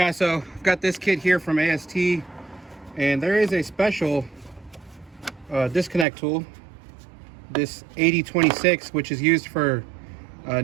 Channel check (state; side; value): drops out; left; at 6.1 s